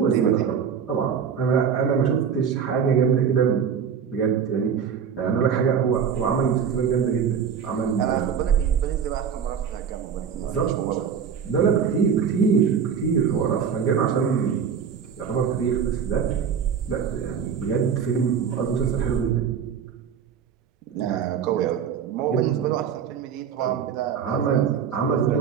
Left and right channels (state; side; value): quieter; left; 7.2 dB